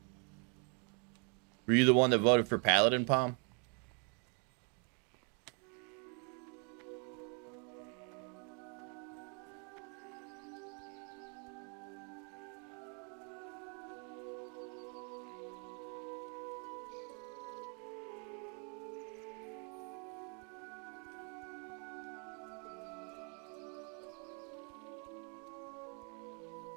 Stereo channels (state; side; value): quieter; left; 37.5 dB